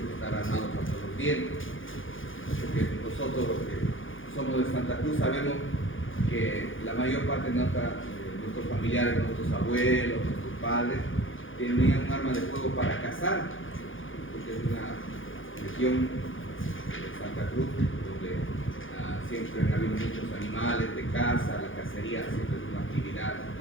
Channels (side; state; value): right; late; 0.58 ms